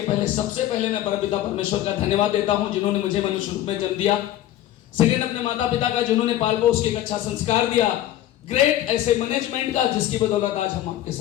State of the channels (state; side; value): quieter; right; 13.3 dB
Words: पहले सबसे पहले मैं परमपिता परमेश्वर का धन्यवाद देता हूं जिन्होंने मुझे मनुष्य रूप में जन्म दिया। सेकंड, अपने माता पिता का जिन्होंने पाल पोस के एक अच्छा संस्कार दिया। ग्रेट ऐसे मैनेजमेंट का जिसकी बदौलत आज हम आपके